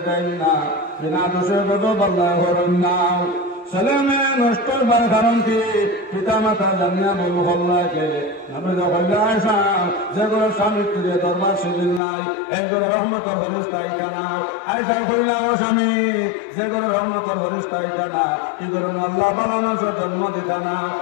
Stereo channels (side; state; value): right; drops out; at 12.0 s